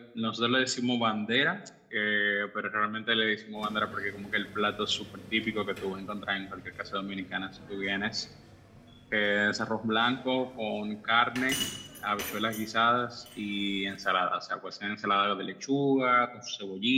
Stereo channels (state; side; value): identical; both; correlation 1.00